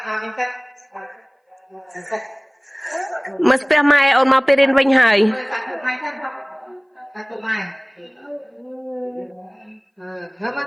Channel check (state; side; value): identical; both; correlation 1.00